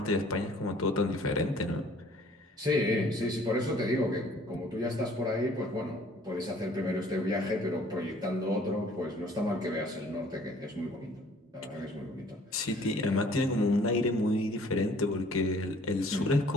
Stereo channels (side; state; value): both; normal; correlation 0.56